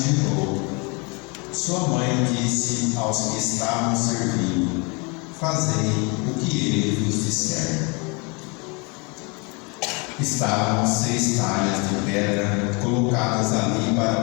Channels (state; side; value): quieter; right; 30.9 dB